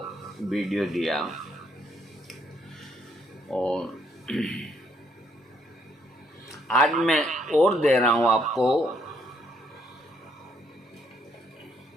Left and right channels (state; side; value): normal; both; correlation 0.70